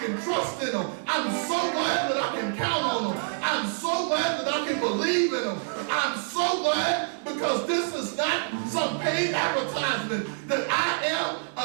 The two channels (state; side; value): silent; left; digital silence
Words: can trust in him. I'm so glad that I can count on him. I'm so glad that I can believe in him. I'm so glad, because this is not some paid advertisement, that I am